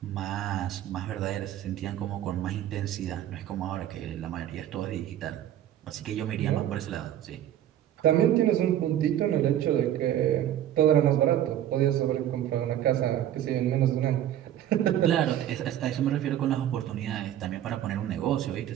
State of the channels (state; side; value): quieter; left; 11.6 dB